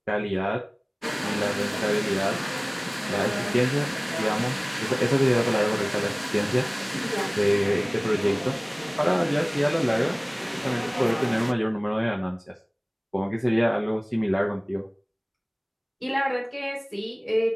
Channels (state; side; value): identical; both; correlation 1.00